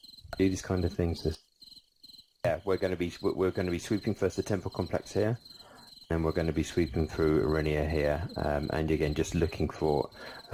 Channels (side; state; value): both; identical; correlation 1.00